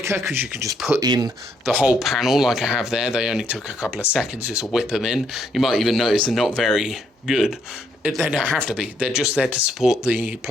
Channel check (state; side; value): normal; both; correlation 0.72